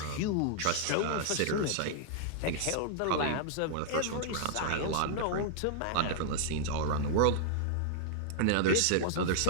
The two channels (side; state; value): both; different; correlation -0.01